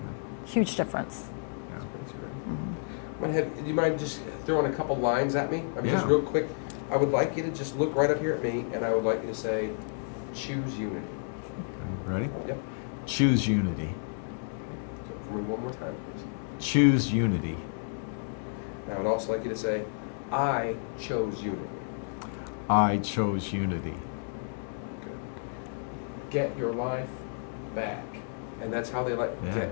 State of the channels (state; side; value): silent; right; digital silence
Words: Huge difference. Do you mind just throwing a couple lines at me? I mean, just Yeah. real quick. I would like you to just look right up here at me, and I would like you to say, choose unity. Okay, ready? Yep. Choose unity. So for me one more time, please. Choose unity. And I would also like you to say, I chose unity. I chose unity. Get your life back. And that's how they like, Yeah.